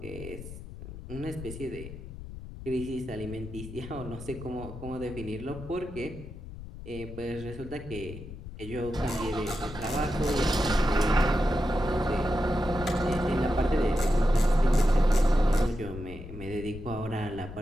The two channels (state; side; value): noise; left; rumble, 12 dB below the sound